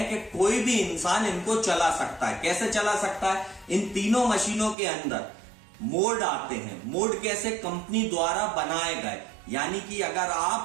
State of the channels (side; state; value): left; drops out; at 4.8 s